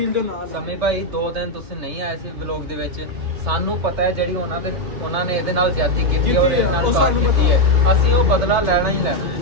ਦੇ ਨਾਲ। ਸਮੀ ਭਾਈ 2 ਦਿਨ ਤੁਸੀਂ ਨਹੀਂ ਆਏ ਸੀ ਵਲੌਗ ਦੇ ਵਿੱਚ, ਸਾਨੂੰ ਪਤਾ ਹੈ ਜਿਹੜੀ ਉਹਨਾਂ ਨੇ ਇਹਦੇ ਨਾਲ ਜ਼ਿਆਦਤੀ ਕੀਤੀ ਔਰ ਇਹਨਾਂ ਨਾਲ ਸਾਨੂੰ ਪਤਾ ਹੈ, ਅਸੀਂ ਉਹ ਬਦਲਾ ਲੈਣਾ ਹੀ ਲੈਣਾ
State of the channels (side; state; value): left; late; 3.3 ms